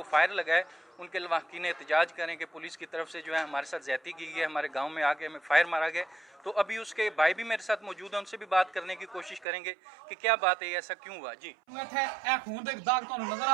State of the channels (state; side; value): drops out; left; at 9.5 s